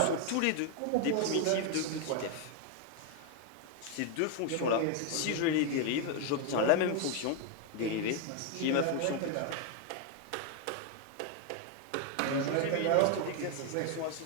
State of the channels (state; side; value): different; both; correlation 0.00